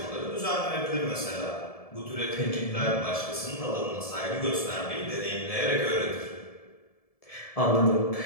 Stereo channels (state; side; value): late; right; 1.7 ms